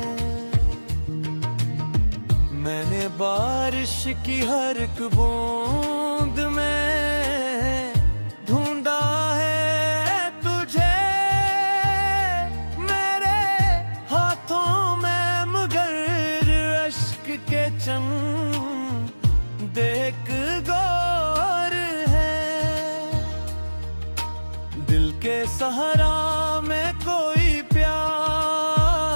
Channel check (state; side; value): inverted; both; correlation -1.00